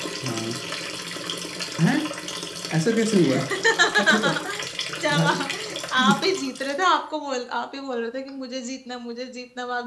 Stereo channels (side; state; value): both; identical; correlation 1.00